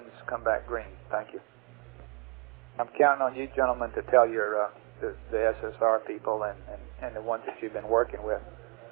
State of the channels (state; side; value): quieter; left; 30.3 dB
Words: come back green. Thank you. I'm counting on you gentlemen to tell your the SSR people and the ones that you've been working with,